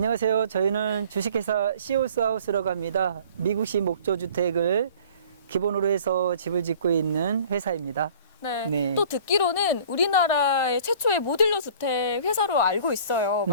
저희는 주식회사 시올스하우스라고 합니다. 미국식 목조주택을 기본으로 해서 집을 짓고 있는 회사입니다. 네. 네. 또 듣기로는 우리나라의 최초의 모듈러 주택 회사로 알고 있어요.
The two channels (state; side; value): inverted; both; correlation -0.49